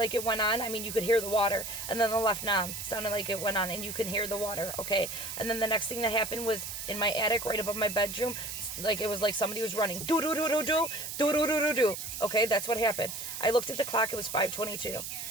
it went on. I mean, you could hear the water. And then the left knob sounded like it went on, and you could hear the water, okay? And then the next thing that happened was in my attic, right above my bedroom, like it was like somebody was running. Do-do-do-do-do, do-do-do-do-do. Okay, that's what happened. I looked at the clock. It was 5:22.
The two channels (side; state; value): right; noise; hiss, 7 dB below the sound